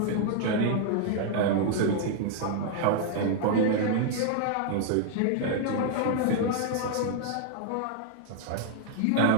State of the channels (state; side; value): different; both; correlation 0.00